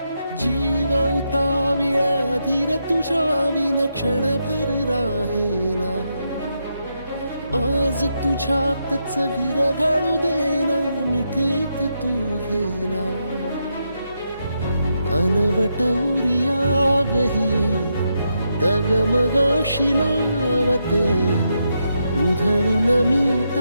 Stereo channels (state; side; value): inverted; both; correlation -0.82